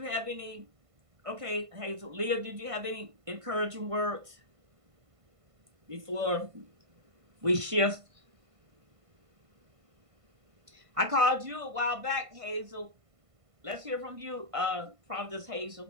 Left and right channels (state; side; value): late; left; 1.5 ms